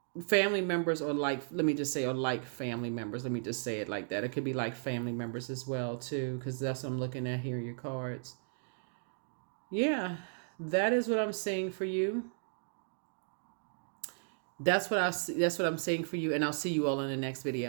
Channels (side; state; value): left; silent; digital silence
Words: family members, or like, let me just say, or like family members, let me just say it like that. It could be like family members as well too, because that's what I'm looking at here, your cards. Yeah, that is what I'm saying for you. That's what I'm saying for you, and I'll see you all in the next